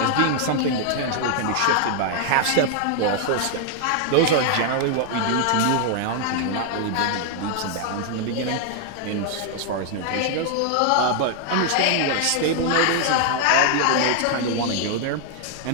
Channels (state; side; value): different; both; correlation 0.00